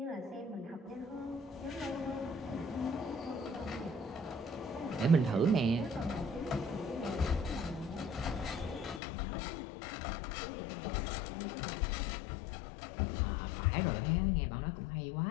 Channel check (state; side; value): drops out; right; at 9.0 s